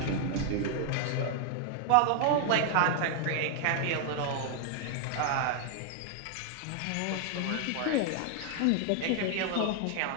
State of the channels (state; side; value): different; both; correlation 0.00